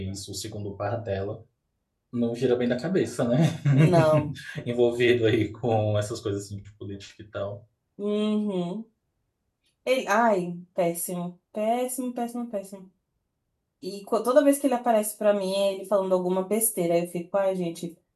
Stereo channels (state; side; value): identical; both; correlation 1.00